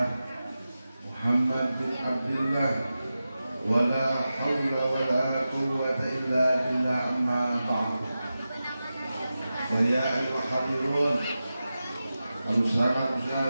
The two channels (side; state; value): both; inverted; correlation -0.93